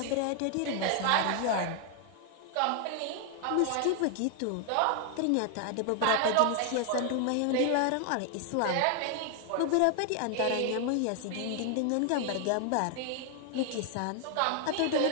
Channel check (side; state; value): both; different; correlation 0.00